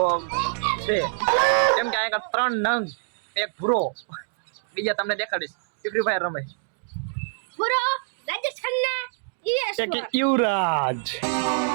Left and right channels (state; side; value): silent; left; digital silence